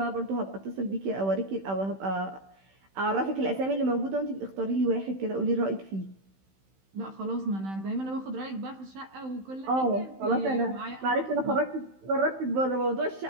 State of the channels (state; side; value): late; left; 16 ms